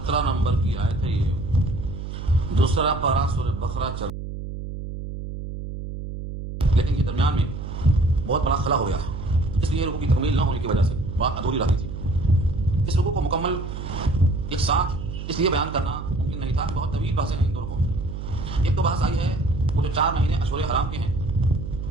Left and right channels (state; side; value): noise; right; hum, 8 dB below the sound